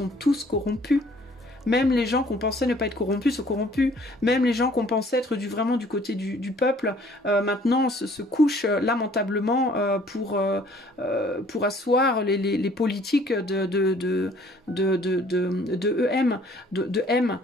tous corrompus. Même les gens qu'on pensait ne pas être corrompus sont corrompus. Même les gens qu'on pensait être vraiment du côté du peuple, maintenant se couchent lamentablement pour asseoir les politiques de M. Bon,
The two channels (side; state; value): both; normal; correlation 0.57